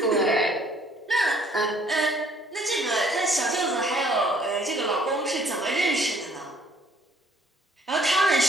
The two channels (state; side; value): normal; both; correlation 0.60